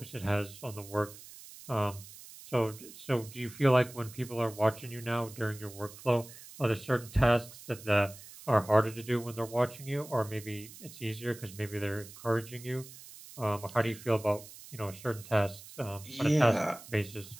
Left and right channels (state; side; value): noise; right; hiss, 17 dB below the sound